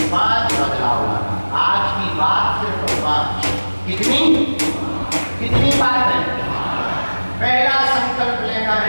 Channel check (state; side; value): inverted; both; correlation -1.00